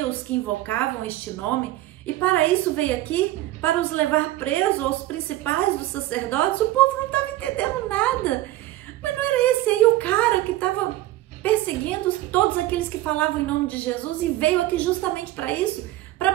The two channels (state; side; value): quieter; left; 16.0 dB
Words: os que invocavam este nome? E para isso veio aqui, para os levar presos aos principais dos sacerdotes? O povo não estava entendendo nada. Mas não era esse aí o cara que estava perseguindo todos aqueles que falavam em nome de Jesus e veio aqui justamente para isso, para